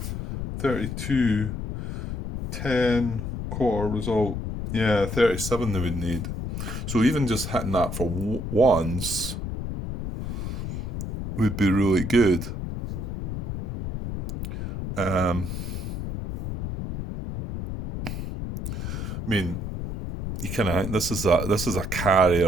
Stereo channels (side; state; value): left; noise; rumble, 4 dB below the sound